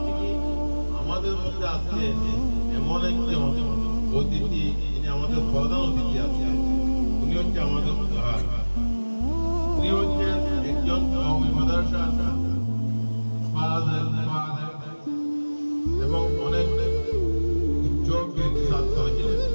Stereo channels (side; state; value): both; inverted; correlation -1.00